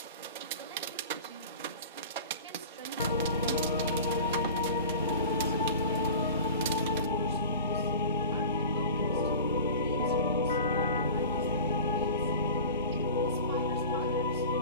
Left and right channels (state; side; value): inverted; both; correlation -0.37